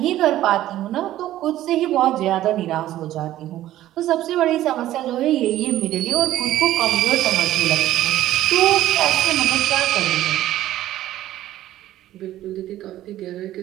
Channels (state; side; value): quieter; left; 13.9 dB